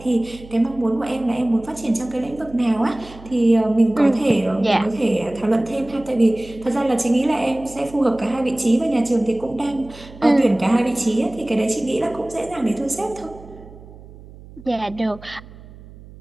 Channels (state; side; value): noise; right; hum, 19 dB below the sound